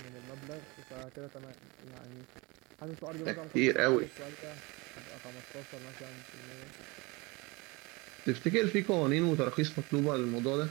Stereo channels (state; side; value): quieter; left; 25.7 dB